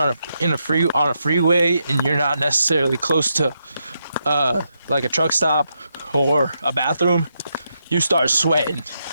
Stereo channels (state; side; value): inverted; both; correlation -0.82